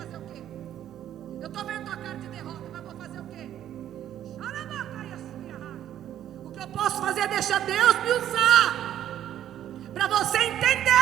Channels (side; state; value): left; quieter; 11.2 dB